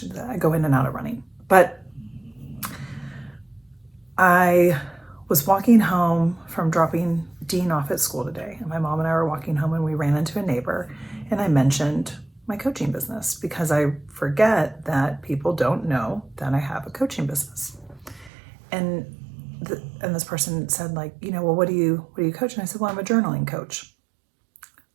go in and out of running. But I was walking home from dropping Dean off at school today, and my mom and I were walking home and we ran into a neighbor, and I mentioned my coaching business because I forget that people don't know that I have a coaching business. And this person said, like, well, what do you coach? And I said, well, I'm a journaling coach,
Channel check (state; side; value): drops out; left; at 18.3 s